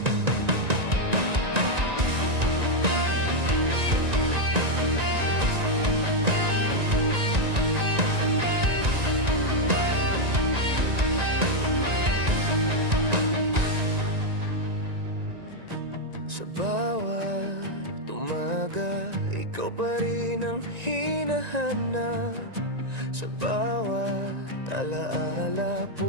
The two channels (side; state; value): left; late; 1.9 ms